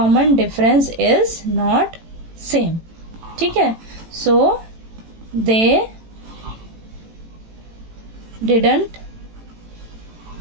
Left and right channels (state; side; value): late; left; 18 ms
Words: difference is not same. ठीक है, सो दे didn't